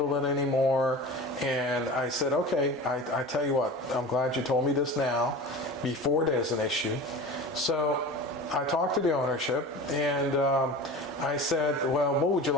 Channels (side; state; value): both; normal; correlation 0.34